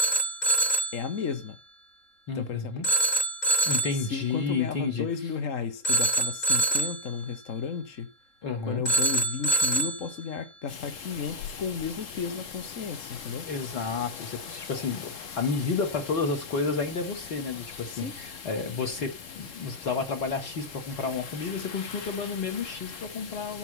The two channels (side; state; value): right; late; 3.8 ms